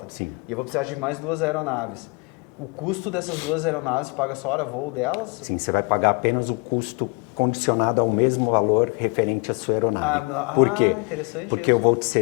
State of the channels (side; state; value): right; quieter; 31.9 dB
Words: Sim. E eu vou precisar de mais 2 aeronaves. O custo dessas 2 aeronaves paga só hora voo delas? Sim, você vai pagar apenas o custo condicionado ao mesmo valor referente à sua aeronave. Por quê? Interessante. Porque eu vou te